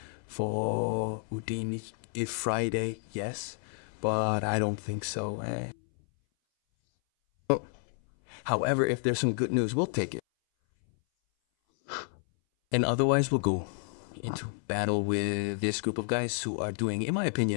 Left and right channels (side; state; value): right; silent; 57 dB below the other